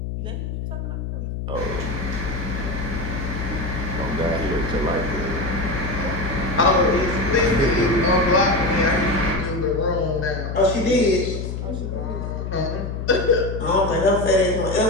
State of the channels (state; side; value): noise; left; hum, 5 dB below the sound